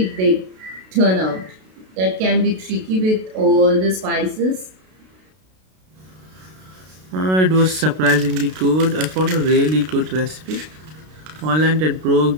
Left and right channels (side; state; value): left; late; 32 ms